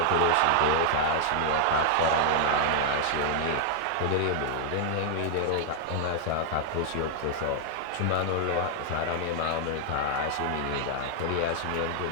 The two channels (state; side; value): different; both; correlation 0.00